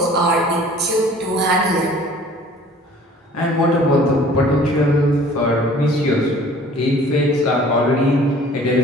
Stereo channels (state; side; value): normal; both; correlation 0.50